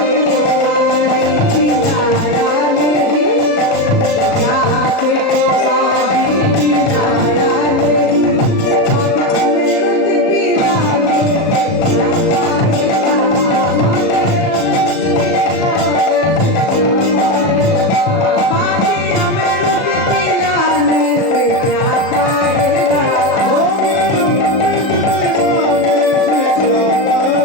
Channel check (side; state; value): right; late; 37 ms